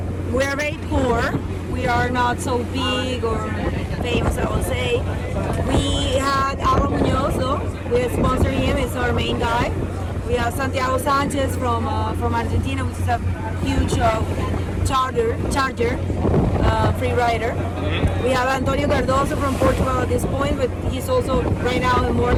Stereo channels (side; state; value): both; identical; correlation 1.00